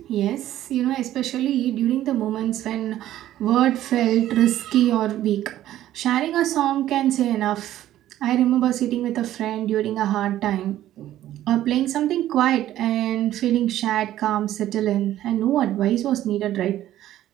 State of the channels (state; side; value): quieter; left; 13.2 dB